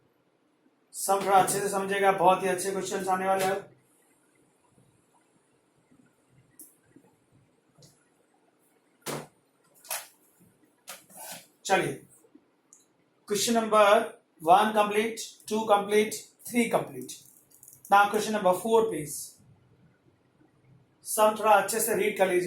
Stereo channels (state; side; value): identical; both; correlation 1.00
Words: सम थोड़ा अच्छे से समझेगा, बहुत ही अच्छे क्वेश्चन आने वाले हैं। चलिए question number 1 complete, 2 complete, 3 complete. Now question number 4 please. Sum थोड़ा अच्छे से रीड कर